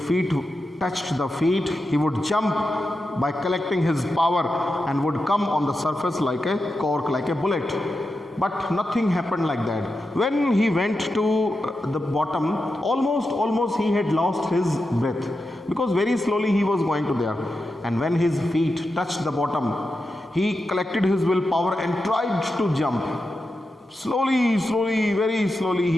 feet touched the feet, he would jump by collecting his power and would come on the surface like a cork, like a bullet. But nothing happened like that. When he went to the bottom, almost he had lost his breath, because very slowly he was going to there. And when his feet touched the bottom, he collected his willpower and tried to jump. Slowly, very slowly,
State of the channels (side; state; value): both; normal; correlation 0.89